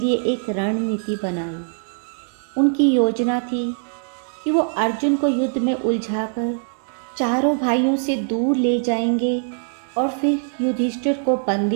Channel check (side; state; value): left; silent; digital silence